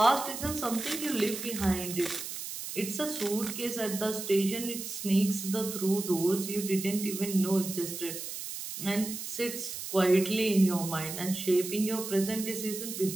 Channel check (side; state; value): right; noise; hiss, 7 dB below the sound